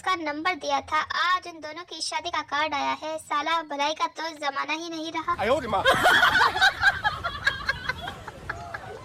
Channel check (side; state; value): both; identical; correlation 1.00